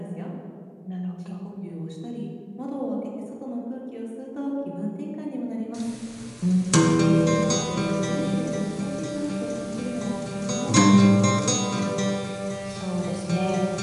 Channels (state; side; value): identical; both; correlation 1.00